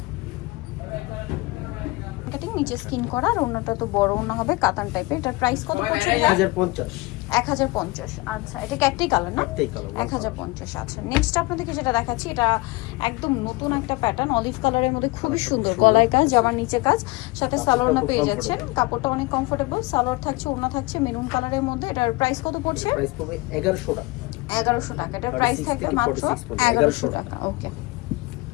কাটিং নিচে স্কিন করা, আর ওন্নাটা তো বড় ওন্না হবে কাতান টাইপের। এটার প্রাইস কত পড়ছে? 1050। আচ্ছা, এটা একটাই কালার না? 1050। আচ্ছা, নেক্সট আপনাদেরকে যেটা দেখাচ্ছি, এটা একদম নতুন একটা প্যাটার্ন, অলিভ কালারের মধ্যে খুবই সুন্দর। গলায় কাজ, জামার নিচে কাজ, সাথে সালোয়ার না পেয়ে যাচ্ছেন। কাপড়টা অনেক কমফোর্টেবল, সালোয়ার থাকছে, ওন্না থাকছে মেরুন কালারের মধ্যে। এটার প্রাইস কত পড়ছে? প্রাইস পড়বে 1100 টাকা। 1100 টাকা। এটার প্রাইস থাকবে মাত্র 1100 টাকা। ওকে,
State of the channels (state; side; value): quieter; right; 23.0 dB